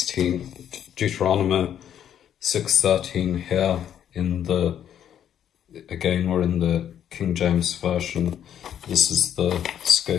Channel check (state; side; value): quieter; right; 9.8 dB